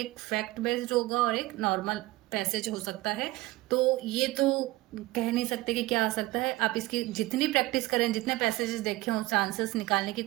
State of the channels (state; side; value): quieter; left; 19.6 dB